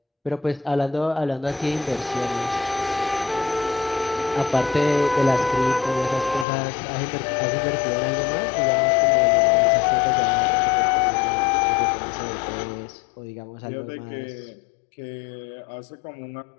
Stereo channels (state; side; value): drops out; right; at 6.5 s